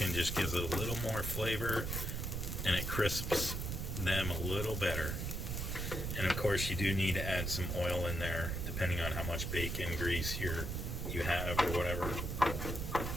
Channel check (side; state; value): right; noise; rumble, 3 dB below the sound